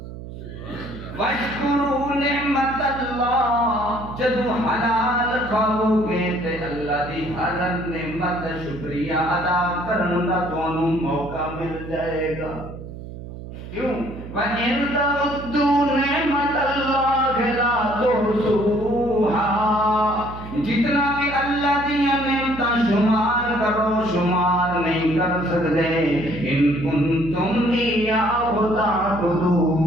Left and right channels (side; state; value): right; noise; hum, 12 dB below the sound